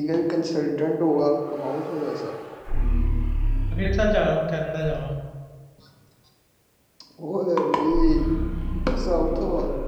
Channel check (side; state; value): both; identical; correlation 1.00